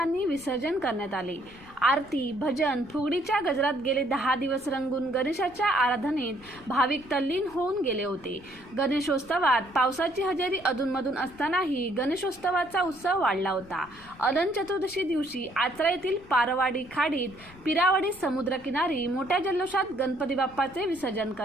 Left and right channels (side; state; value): left; noise; rumble, 23 dB below the sound